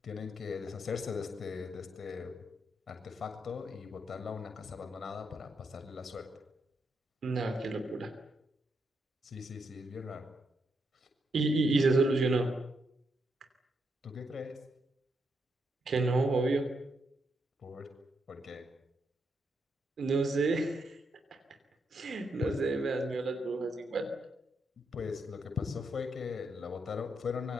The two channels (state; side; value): normal; both; correlation 0.80